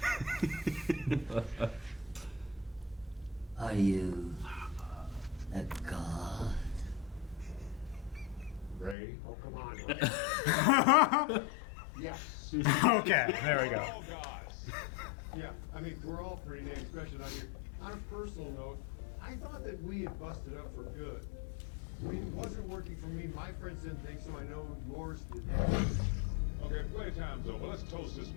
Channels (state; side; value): drops out; right; at 9.0 s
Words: Are you a god? Ray? Oh, come on. Yes. Okay, there we go. All gods. Yeah, I mean, we're all pretty damn special out here. On a personal note, I thought that we had busted up for good. I mean, it wasn't working for me. My friends didn't think so. I know yours did. Okay, playtime's over. Let's toast this